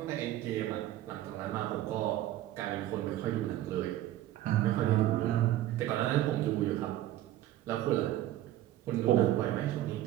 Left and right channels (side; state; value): left; quieter; 13.9 dB